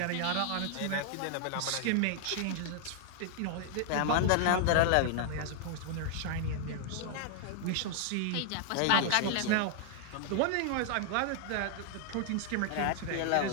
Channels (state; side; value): different; both; correlation 0.00